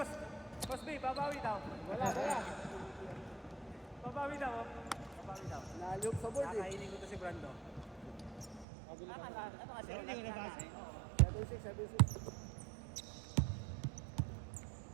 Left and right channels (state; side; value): drops out; left; at 8.7 s